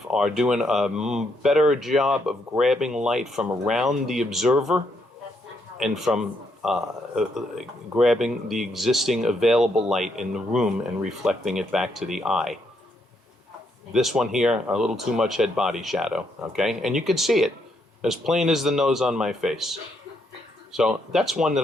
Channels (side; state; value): both; normal; correlation 0.76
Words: are doing a better job of grabbing light from around the observer and from grabbing the existing available light in the room and reflecting it back to the eye. This one here, a little too much head-body shadow, okay? And you can see it as plain as the nose on my face. So that's one